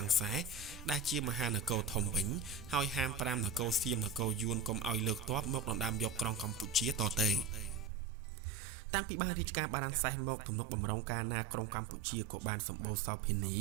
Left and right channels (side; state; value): left; drops out; at 7.9 s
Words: ាំងសេះដែលជាមហានគរធំវិញហើយហាម5នគរសៀមនគរយួនកុំឲ្យលើកទ័ពមកដណ្ដើមយកក្រុងកម្ពុជាតទៅតាំងពីបានរាជការបារាំងសេះមកទំនុកបំរុងការណាក្រុងកម្ពុជាក៏បានសម្បូរសោភានី